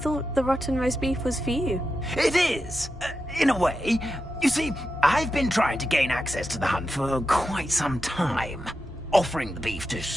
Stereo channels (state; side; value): normal; both; correlation 0.89